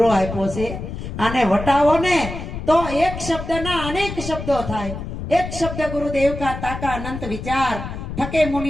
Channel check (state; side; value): noise; left; rumble, 8 dB below the sound